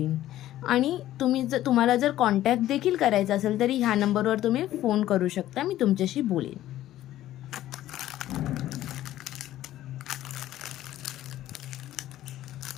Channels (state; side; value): quieter; right; 13.7 dB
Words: आणि तुम्हाला जर कॉन्टॅक्ट देखील करायचा असेल तरी ह्या नंबरवर तुम्ही फोन करू शकता, मी तुमच्याशी बोलेन।